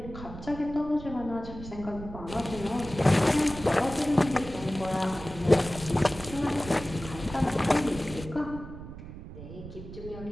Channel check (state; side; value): noise; right; rumble, 13 dB below the sound